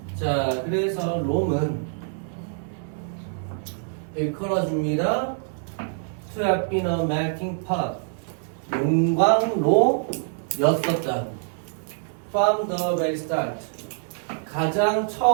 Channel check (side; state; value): left; silent; digital silence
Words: 자, 그래서 롬은 일컬어줍니다. To have been a melting pot. 용광로였었다. From the very start. 가장